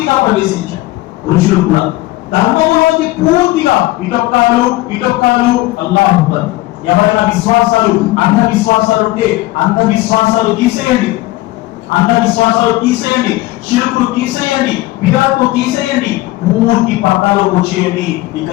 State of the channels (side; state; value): right; quieter; 18.6 dB